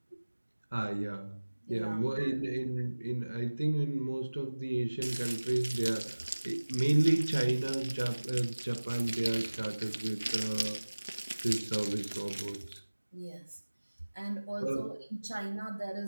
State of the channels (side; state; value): both; inverted; correlation -1.00